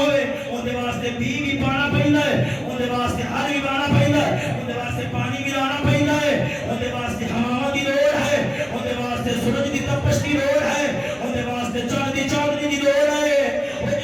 اون دے واسطے بھی پانا پیندا ہے اون دے واسطے ہل بھی بانا پیندا ہے اون دے واسطے پانی بھی لانا پیندا ہے اون دے واسطے ہوا دی لوڑ ہے اون دے واسطے سورج دی تپش دی لوڑ ہے اون دے واسطے چاند دی چاندنی دی لوڑ ہے او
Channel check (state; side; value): identical; both; correlation 1.00